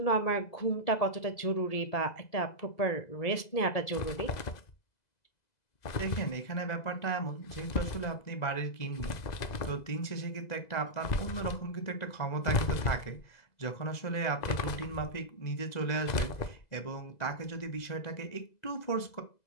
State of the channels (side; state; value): right; late; 2.0 ms